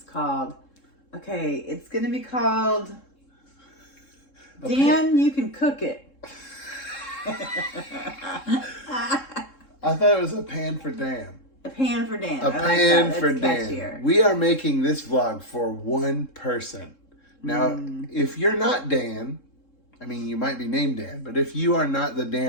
called, it's going to be called Dan, You Can Cook It. I thought it was a pan for Dan. A pan for Dan. A pan for Dan. We are making this vlog for one person. Now, if you're not Dan, I mean, you might be named Dan, but if you are not the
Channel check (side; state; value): right; late; 3.7 ms